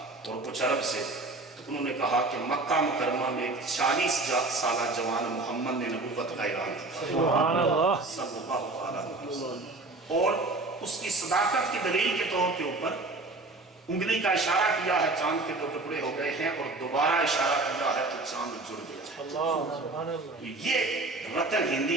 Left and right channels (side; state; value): left; quieter; 3.2 dB